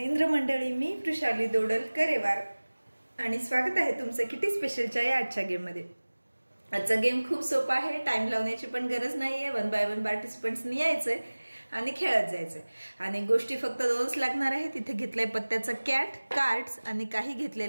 मंडळी, मी वृषाली दोडल करेवार आणि स्वागत आहे तुमचं किटी स्पेशलच्या या आजच्या गेम मध्ये। आजचा गेम खूप सोपा आहे, टाइम लावण्याची पण गरज नाहीये। 1 बाय 1 पार्टिसिपंट्सनी यायचंय आणि खेळत जायचंय आणि गोष्टी फक्त दोनच लागणार आहेत। इथे घेतलंय पत्त्याचा कॅट, कार्ड्स आणि काही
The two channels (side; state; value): both; inverted; correlation -1.00